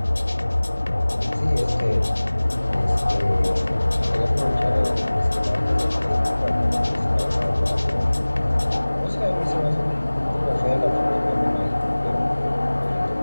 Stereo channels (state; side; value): inverted; both; correlation -1.00